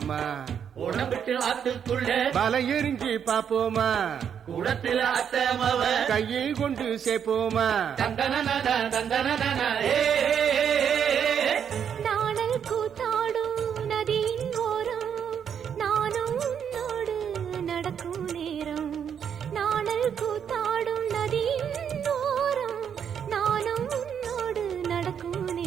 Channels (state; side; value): quieter; left; 8.0 dB